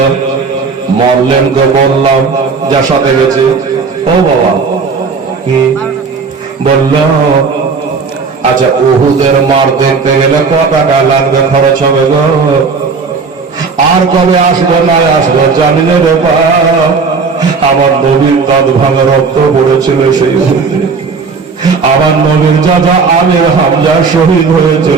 মরলেনকে বললাম যার সাথে গেছে, ও বাবা কি বলল, আচ্ছা উহুদের মার দেখতে গেলে কত টাকা লাগবে, খরচ হবে গো, আর কবে আসবে না আসবে জানি না রে বাপ, আমার নবীর দাঁত ভাঙা রক্ত পড়েছিল সেই আমার নবীর চাচা আমির হামজা শহীদ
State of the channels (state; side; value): quieter; left; 4.9 dB